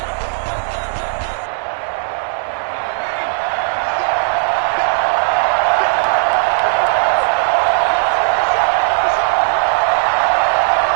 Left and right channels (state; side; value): silent; left; 69 dB below the other